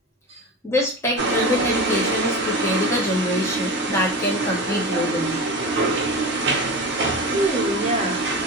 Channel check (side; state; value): both; normal; correlation 0.27